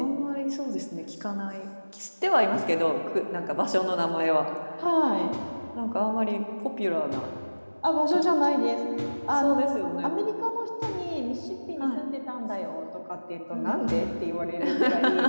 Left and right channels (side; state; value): both; inverted; correlation -1.00